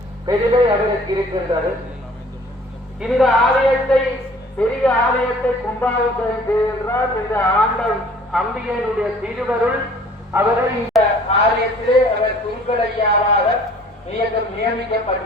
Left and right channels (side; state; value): both; normal; correlation 0.52